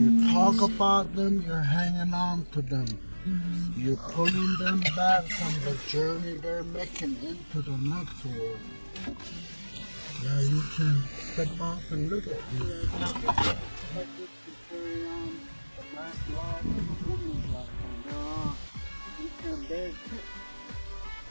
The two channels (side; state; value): both; inverted; correlation -1.00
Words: talk talk about them, you're hanging on to them. You're pulling them back from the journey they're making into the next world. Yeah, you can step off and look at these.